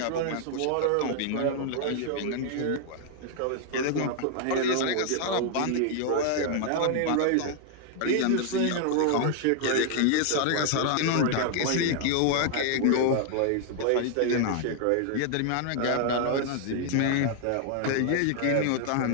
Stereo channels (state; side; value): different; both; correlation 0.00